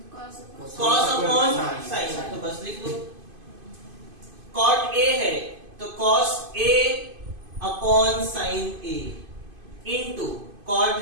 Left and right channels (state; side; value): late; left; 2.5 ms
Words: cos upon sign. तो बस लिख लो. कॉट ए है तो cos a upon sine a into cot